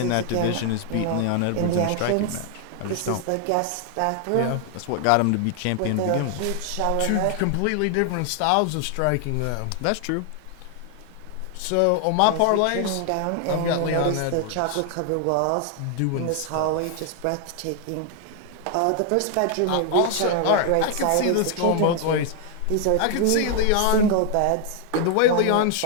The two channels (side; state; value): both; different; correlation 0.00